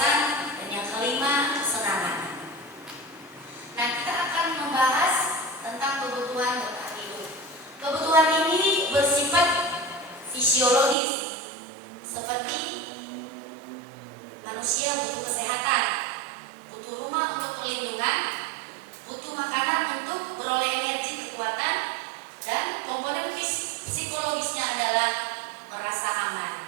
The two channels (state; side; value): drops out; left; at 11.0 s